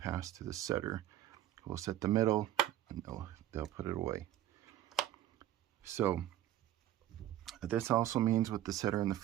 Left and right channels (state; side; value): quieter; left; 12.9 dB